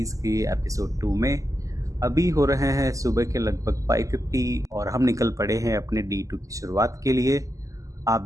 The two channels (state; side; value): late; left; 0.16 ms